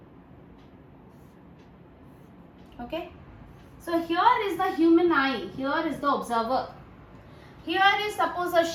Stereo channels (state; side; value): identical; both; correlation 1.00